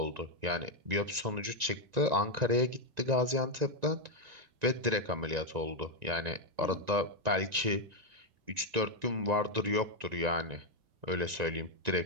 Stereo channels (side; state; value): left; late; 1.9 ms